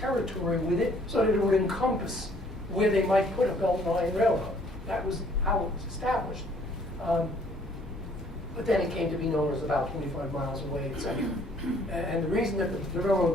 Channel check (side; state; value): both; normal; correlation 0.60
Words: with it, so that it would encompass where they might put a Beltline Railroad. That was how it was established. But then it came to be known as about 25 miles away, etc. And the reason that the